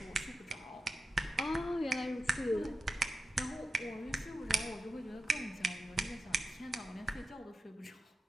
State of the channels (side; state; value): both; normal; correlation 0.90